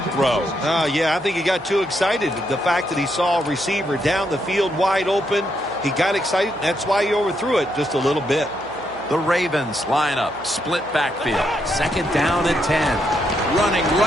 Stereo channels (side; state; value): right; noise; hum, 22 dB below the sound